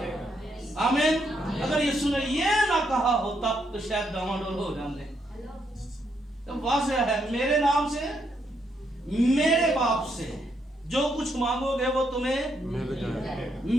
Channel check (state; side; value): normal; both; correlation 0.77